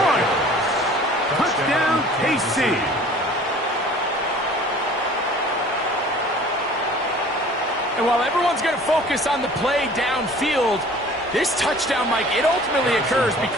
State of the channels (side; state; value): both; normal; correlation 0.48